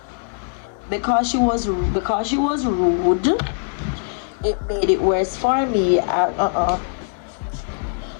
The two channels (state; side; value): silent; right; 59 dB below the other